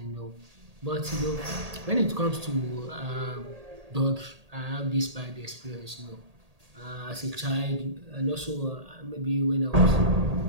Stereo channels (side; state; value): left; late; 1.8 ms